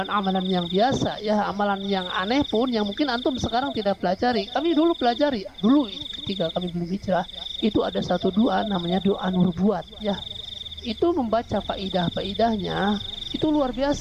yang biasa ya, amalan yang aneh pun yang mungkin antum sekarang tidak pelajari, kami dulu pelajari. Dulu ketika kami belum hijrah, itu ada satu doa namanya doa nubuat ya. Itu membaca faidah-faidahnya itu luar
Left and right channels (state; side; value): identical; both; correlation 1.00